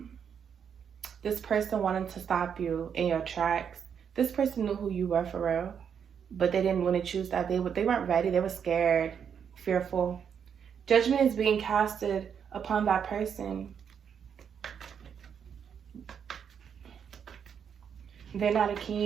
person wanted to stop you in your tracks. This person knew who you were for real, but they didn't want to choose that. They weren't ready. They were scared, fearful. Judgment is being casted upon that person. They're not a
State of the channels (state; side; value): quieter; left; 7.5 dB